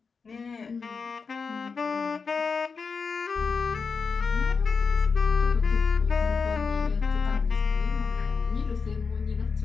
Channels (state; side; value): quieter; right; 5.1 dB